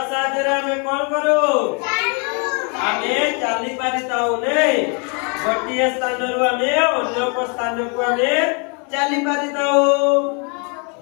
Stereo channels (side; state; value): right; quieter; 35.9 dB